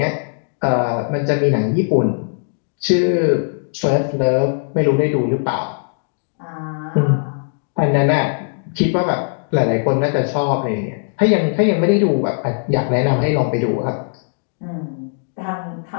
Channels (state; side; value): silent; right; digital silence